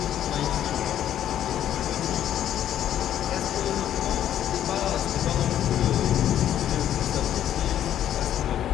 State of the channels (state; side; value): quieter; right; 11.0 dB